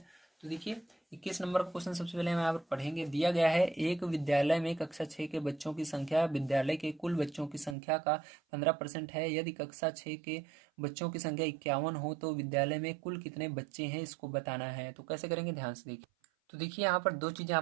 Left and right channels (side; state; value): left; drops out; at 7.8 s